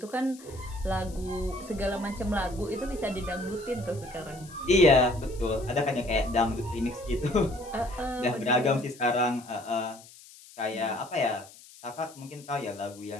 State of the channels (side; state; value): left; noise; hiss, 21 dB below the sound